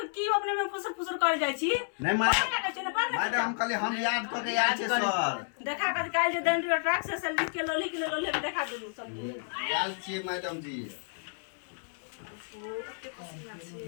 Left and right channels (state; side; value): silent; right; 57 dB below the other